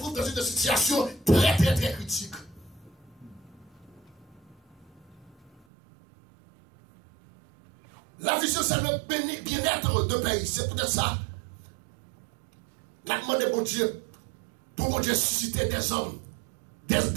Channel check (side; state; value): left; drops out; at 5.7 s